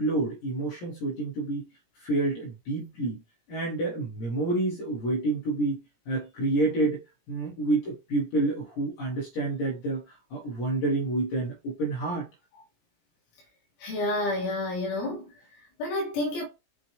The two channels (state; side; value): late; right; 17 ms